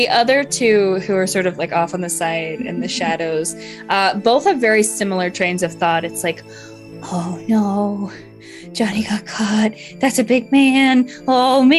other two, who are sort of like off on the side in the shadows, both have very similar trains of thought. It's like, oh no, Johnny got caught. That's a big man. Oh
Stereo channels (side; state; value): both; identical; correlation 1.00